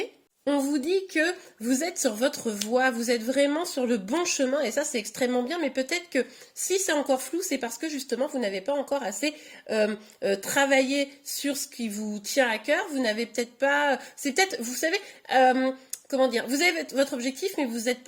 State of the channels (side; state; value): both; identical; correlation 1.00